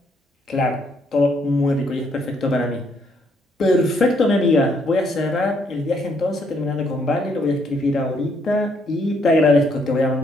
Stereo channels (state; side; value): normal; both; correlation 0.71